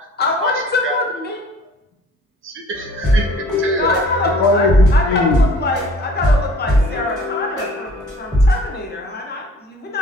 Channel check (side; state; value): both; normal; correlation 0.51